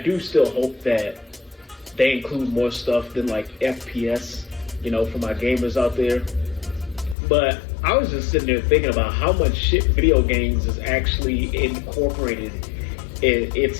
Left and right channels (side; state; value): right; drops out; at 7.2 s